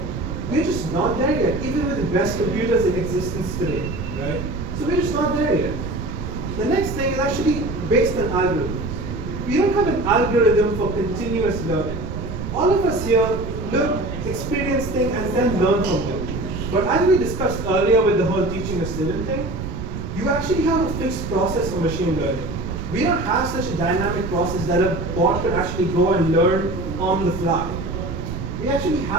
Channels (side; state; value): right; noise; rumble, 6 dB below the sound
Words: We're just not there yet, even with the best computers in existence today, right? So we're just not there yet. The next thing is actually based on algorithms. We don't have an algorithm for continuous learning. All of us here look, experience things, and then learn from them. But as we discussed earlier with the whole teaching a student thing, you actually have a fixed process for machine learning. We don't have such a dynamic process that a bot could actually go and learn on the fly. We actually